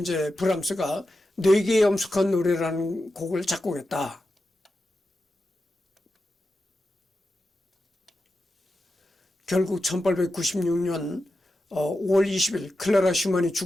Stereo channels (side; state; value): both; normal; correlation 0.90